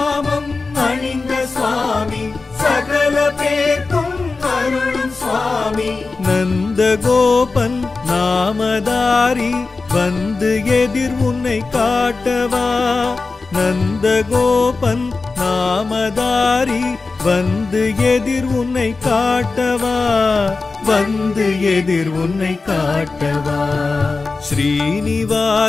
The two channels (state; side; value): quieter; right; 3.9 dB